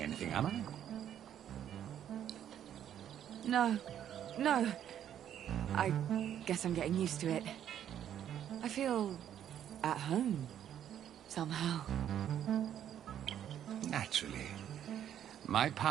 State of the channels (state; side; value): quieter; left; 10.1 dB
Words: anything, am I? No. No. I guess I'm getting used to it. I feel at home, somehow. Naturally. My